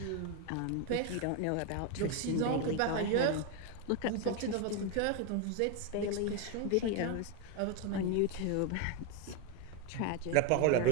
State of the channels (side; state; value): both; different; correlation 0.01